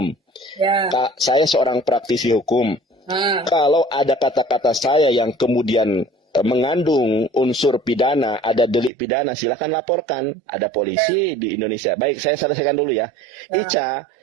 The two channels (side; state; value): left; drops out; at 8.9 s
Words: Ya. Saya seorang praktisi hukum. Kalau ada kata-kata saya yang kemudian mengandung unsur pidana, ada delik pidana, silakan laporkan. Ada polisi di Indonesia. Baik, saya selesaikan dulu ya. Ica,